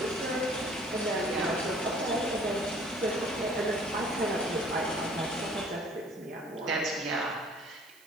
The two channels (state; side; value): noise; right; hiss, 25 dB below the sound